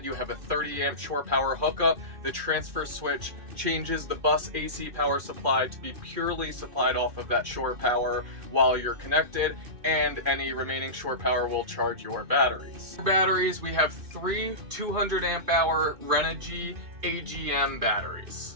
you have a 30 amp shore power hookup. The transfer switch changes the bus AC power supply to be purely supplied off of that shore power while you're connected, and any remaining shore power will charge your batteries. For batteries, we have 3 200 amp hour Renogy AGM batteries.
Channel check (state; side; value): late; left; 2.5 ms